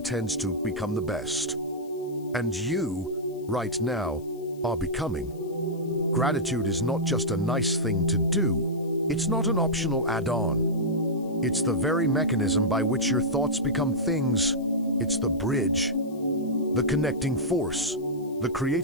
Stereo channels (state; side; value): noise; left; hiss, 27 dB below the sound